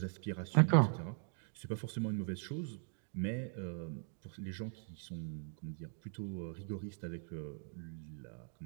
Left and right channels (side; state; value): left; silent; 51 dB below the other